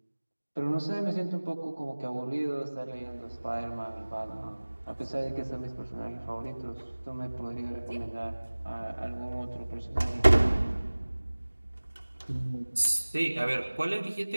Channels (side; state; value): both; inverted; correlation -1.00